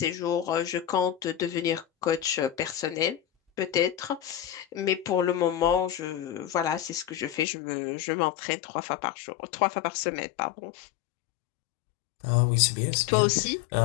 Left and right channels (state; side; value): drops out; right; at 7.5 s